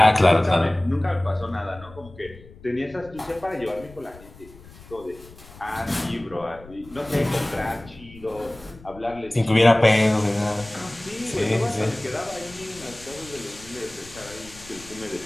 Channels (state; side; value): noise; left; rumble, 20 dB below the sound